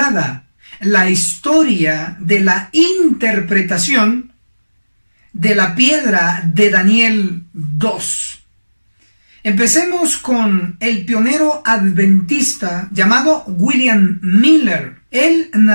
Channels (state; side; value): inverted; both; correlation -1.00